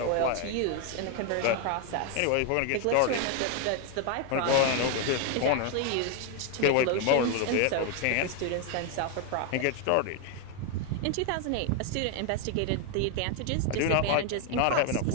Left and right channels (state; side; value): different; both; correlation 0.01